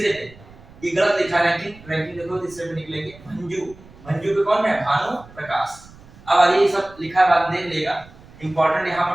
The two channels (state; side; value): noise; right; rumble, 22 dB below the sound